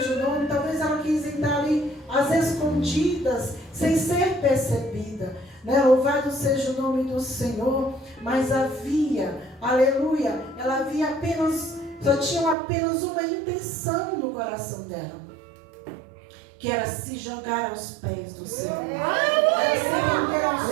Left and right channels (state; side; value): drops out; left; at 12.6 s